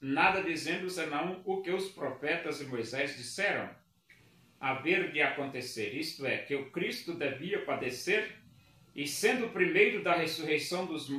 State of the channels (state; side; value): identical; both; correlation 1.00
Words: nada dizendo senão o que os profetas e Moisés disseram haver de acontecer, isto é, que o Cristo devia padecer, e sendo o primeiro da ressurreição dos